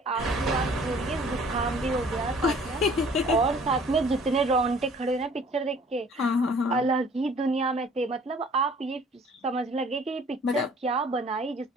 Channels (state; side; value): normal; both; correlation 0.53